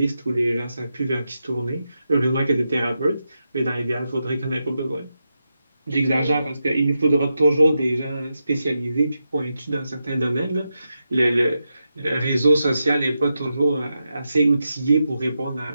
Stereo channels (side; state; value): both; inverted; correlation -0.88